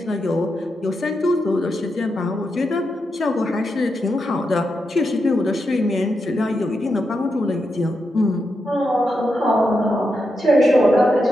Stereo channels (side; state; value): both; normal; correlation 0.86